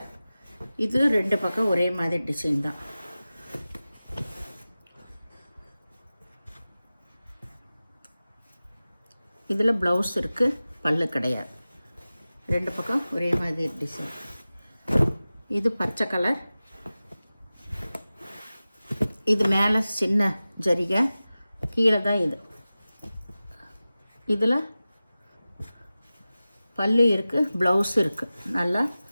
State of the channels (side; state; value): both; inverted; correlation -0.96